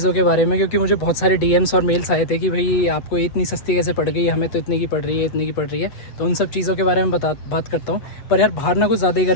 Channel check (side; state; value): right; late; 8.1 ms